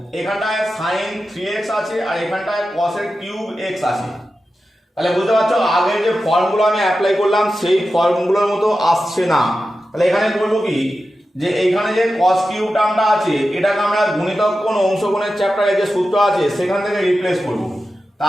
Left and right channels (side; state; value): both; normal; correlation 0.92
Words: এখানটায় sin 3x আছে আর এখানটায় cos এর কিউব x আছে। তাহলে বুঝতে পারছো আগের যে ফর্মগুলো আমি অ্যাপ্লাই করলাম সেই ফর্মগুলোর মতো আসছে না। তাহলে এখানে বলবো কি, যে এইখানে যে cos কিউব টার্মটা আছে এটাকে আমরা গুণিতক কোণ অংশ কোণের চ্যাপ্টারে যে সূত্র আছে সেখান থেকে রিপ্লেস করব।